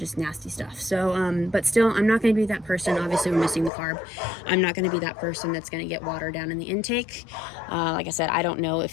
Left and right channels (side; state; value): right; drops out; at 3.7 s